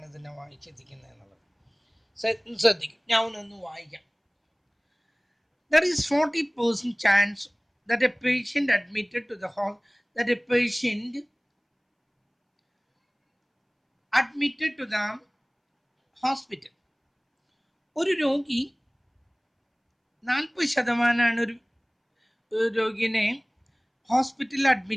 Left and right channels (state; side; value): identical; both; correlation 1.00